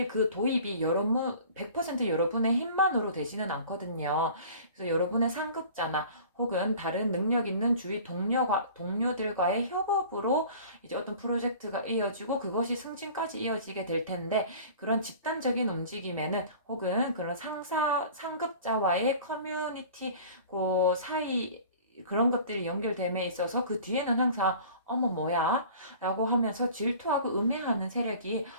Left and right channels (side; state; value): both; inverted; correlation -0.44